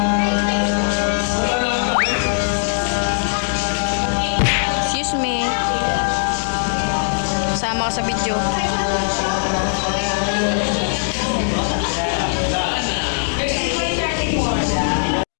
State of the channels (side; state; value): right; silent; digital silence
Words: Excuse me. Sama ka sa video. Ilan?